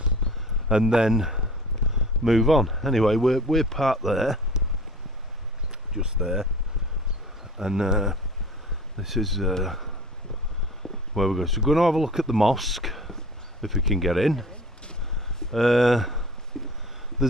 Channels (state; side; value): normal; both; correlation 0.43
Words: and then move on. Anyway, we're parked there, just there, and this is where we're going. So we're going to have a look at the mosque if we can get in. There's